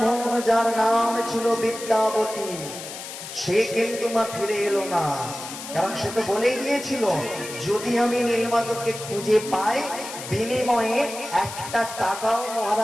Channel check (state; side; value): noise; left; hiss, 10 dB below the sound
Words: যার নাম ছিল বিদ্যাবতী সে কিন্তু মা ফিরে এলো না কারণ সে তো বলেই দিয়েছিল যদি আমি নীলমাধবকে খুঁজে পাই বিনিময়ে একটা টাকাও